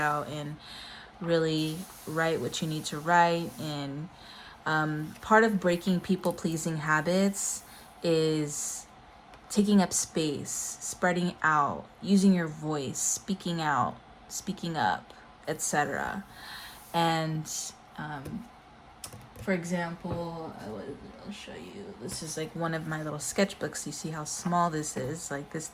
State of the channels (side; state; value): both; identical; correlation 1.00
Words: and really write what you need to write. And part of breaking people pleasing habits is taking up space, spreading out, using your voice, speaking out, speaking up, etc. And for example, I'll show you. This is like one of my little sketchbooks. You see how small this is. Like this